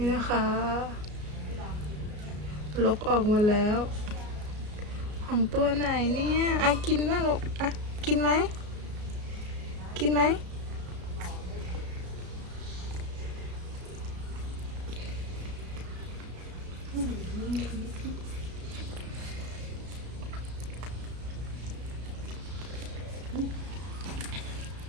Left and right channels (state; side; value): late; left; 33 ms